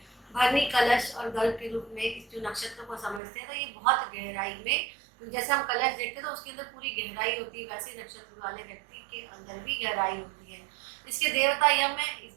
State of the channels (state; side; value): drops out; left; at 3.2 s